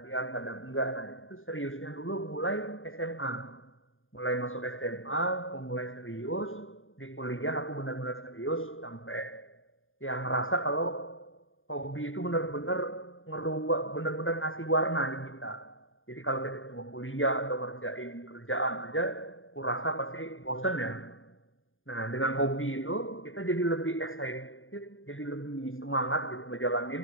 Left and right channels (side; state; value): right; late; 0.59 ms